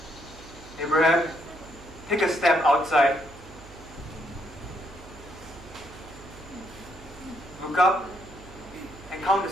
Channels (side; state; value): right; noise; hum, 19 dB below the sound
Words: Abraham, take a step outside. Look up and count